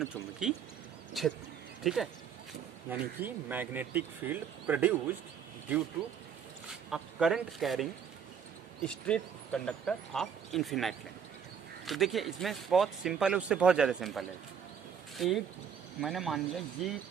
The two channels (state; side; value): quieter; left; 7.5 dB